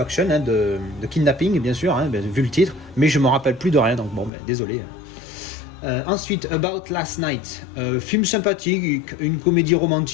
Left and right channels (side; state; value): right; drops out; at 4.3 s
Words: hein, de kidnapping, bien sûr, hein, vu le titre, mais je me rappelle plus de rien, donc bon, désolé. Ensuite, About Last Night, film sympathique, une comédie